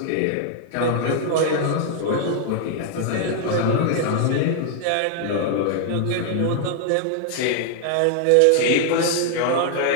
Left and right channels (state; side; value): different; both; correlation 0.00